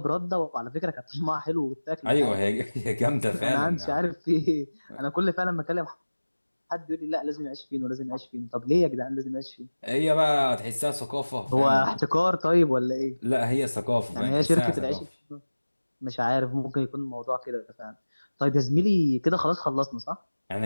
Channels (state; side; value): inverted; both; correlation -1.00